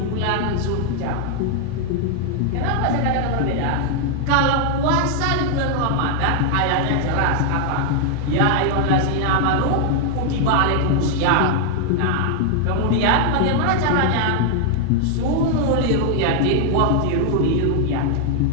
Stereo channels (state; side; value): different; both; correlation 0.00